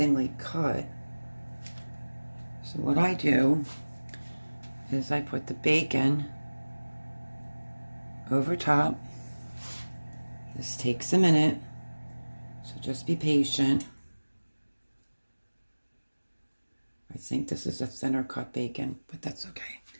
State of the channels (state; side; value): inverted; both; correlation -1.00